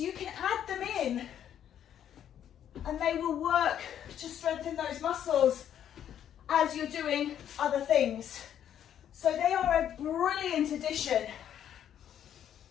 can add them in and they will work to strengthen those muscles as you're doing other things. So they are a brilliant addition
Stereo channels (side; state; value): right; quieter; 10.0 dB